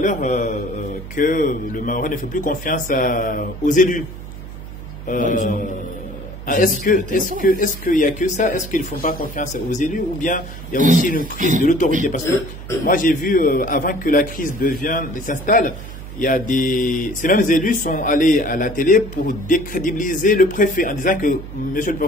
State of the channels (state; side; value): noise; right; hum, 12 dB below the sound